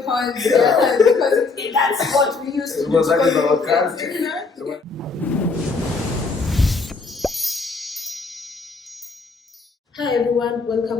horns, yeah, because that's what we used to do. Because that is our country. Hi everyone,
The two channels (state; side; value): quieter; right; 4.2 dB